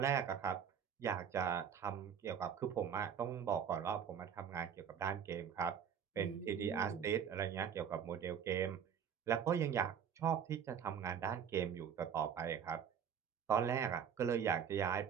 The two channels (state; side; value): quieter; left; 7.9 dB